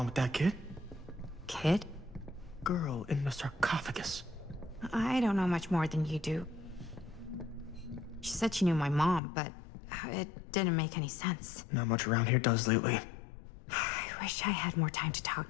with that kid? Kid? Girl in the sarcophagus. I don't know much more than you do. She said she knew my mom, but it didn't make any sense. Not much around here does lately. I wish I had more time to talk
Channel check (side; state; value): right; drops out; at 9.2 s